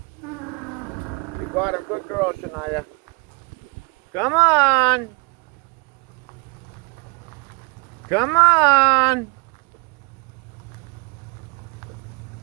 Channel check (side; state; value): left; quieter; 31.2 dB